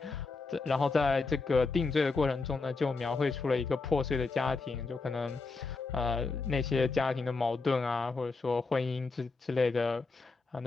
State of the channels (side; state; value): right; quieter; 4.0 dB